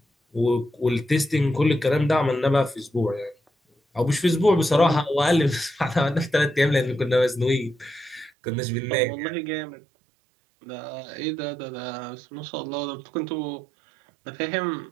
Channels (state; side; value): drops out; left; at 8.3 s